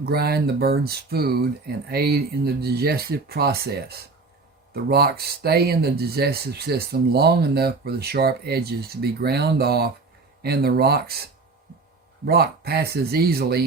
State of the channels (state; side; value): quieter; left; 4.0 dB